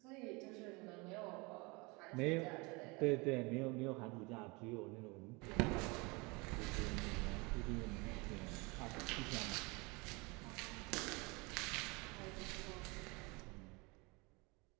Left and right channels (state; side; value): quieter; left; 26.9 dB